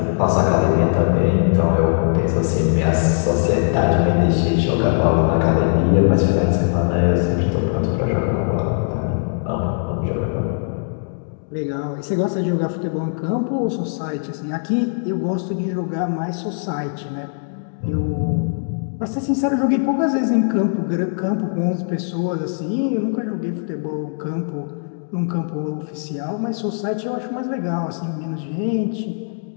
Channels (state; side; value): silent; right; digital silence